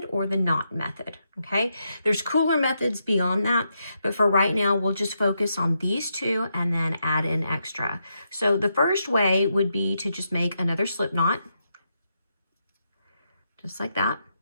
or the knot method, okay? There's cooler methods beyond that, but for right now, we'll just focus on these two and then add in extra. So the first way would be to just make another slip knot, just like that,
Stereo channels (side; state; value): both; inverted; correlation -0.82